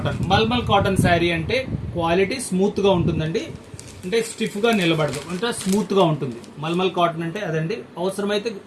Mulmul cotton sari అంటే క్వాలిటీ స్మూత్ గా ఉంటుందండి, అంటే స్టిఫ్ గా నిలబడదు, అంటే స్మూత్ గా ఉంటుంది. మల్మల్ కాటన్ అంటే అదండి. అవసరమైతే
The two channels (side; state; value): both; identical; correlation 1.00